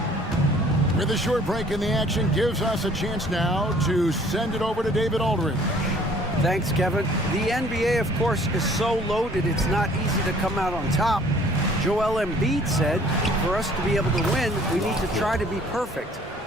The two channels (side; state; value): both; normal; correlation 0.55